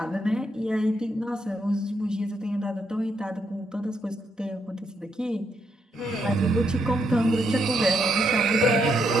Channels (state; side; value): normal; both; correlation 0.77